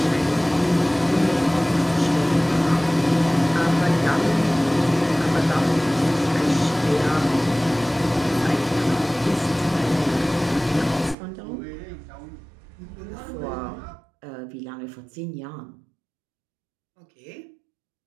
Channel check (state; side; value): drops out; left; at 11.2 s